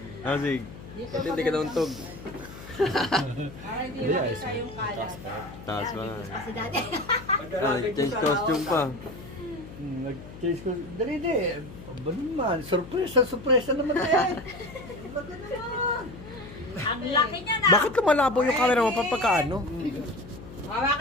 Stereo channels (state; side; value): noise; left; hum, 15 dB below the sound